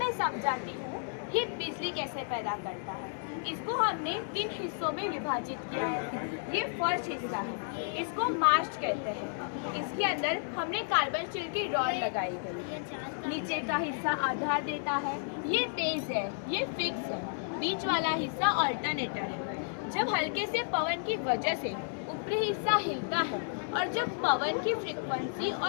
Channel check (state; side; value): silent; right; digital silence